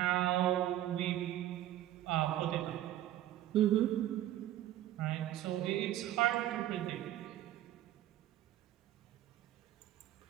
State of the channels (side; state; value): left; quieter; 13.3 dB